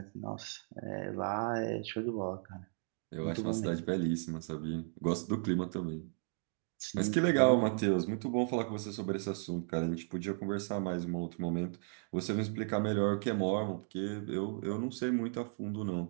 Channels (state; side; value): silent; left; 54 dB below the other